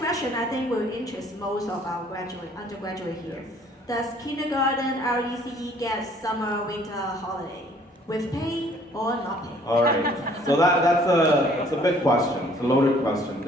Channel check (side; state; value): both; normal; correlation 0.58